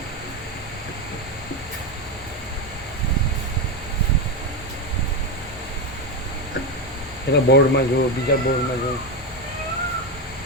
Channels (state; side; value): normal; both; correlation 0.11